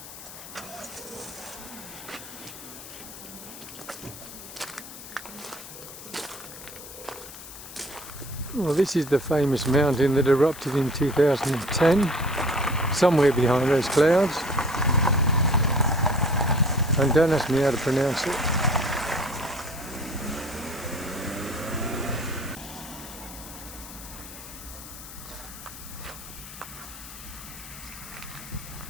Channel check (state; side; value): noise; left; hiss, 14 dB below the sound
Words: Well, this is the famous mountain that erupted in 2010, somewhere behind those clouds. And don't ask me how to pronounce it.